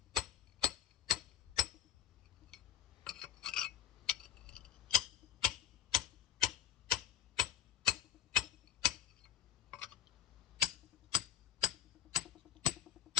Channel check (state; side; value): quieter; right; 12.7 dB